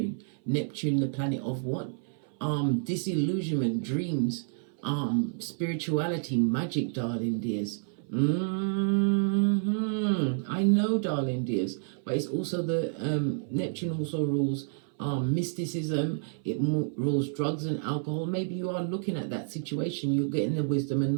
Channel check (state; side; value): silent; left; 56 dB below the other